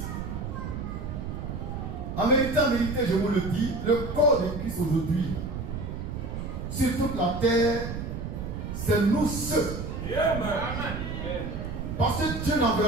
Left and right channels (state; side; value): noise; right; rumble, 6 dB below the sound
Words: En vérité, je vous le dis, le corps de Christ aujourd'hui, sur toute la terre, c'est nous ceux. Parce que Dieu